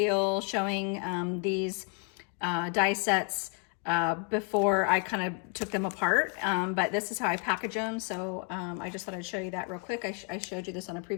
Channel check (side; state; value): right; quieter; 38.9 dB